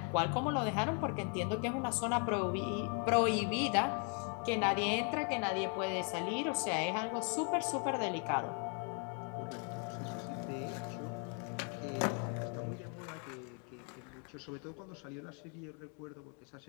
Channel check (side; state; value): right; quieter; 38.5 dB